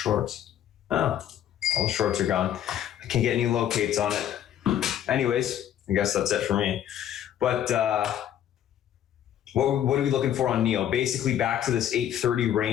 Oh, all the shorts are gone. I can't get any locates on it. Anyways, I guess that's it for me. But what are we looking for on NEO? Basically back to this 830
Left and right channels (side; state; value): right; quieter; 10.7 dB